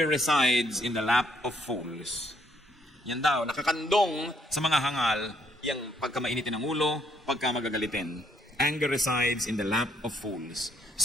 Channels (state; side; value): normal; both; correlation 0.70